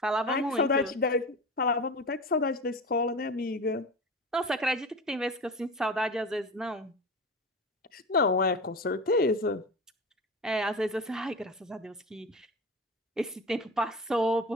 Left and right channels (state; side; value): normal; both; correlation 0.30